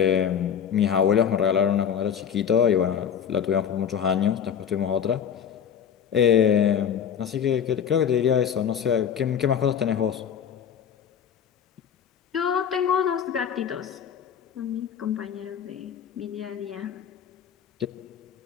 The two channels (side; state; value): right; quieter; 8.2 dB